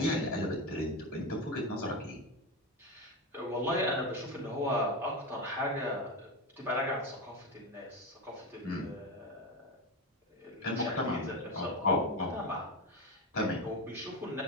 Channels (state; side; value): normal; both; correlation 0.17